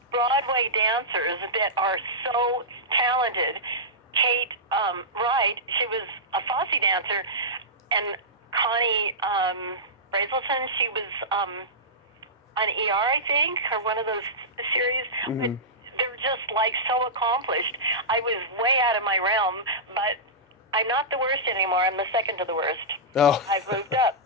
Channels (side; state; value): both; normal; correlation -0.15